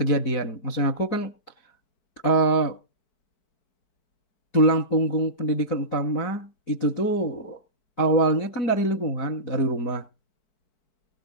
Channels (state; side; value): late; right; 4.6 ms